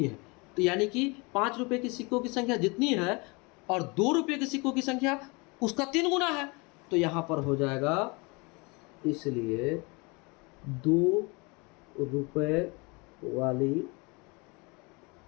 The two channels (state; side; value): quieter; right; 28.1 dB